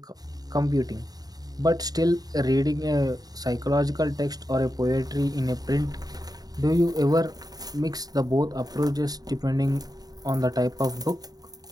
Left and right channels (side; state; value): left; late; 0.18 ms